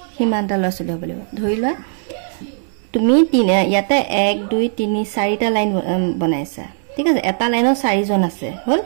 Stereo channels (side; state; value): left; silent; digital silence